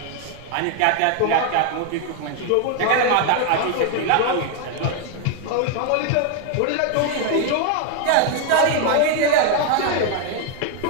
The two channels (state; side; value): different; both; correlation 0.00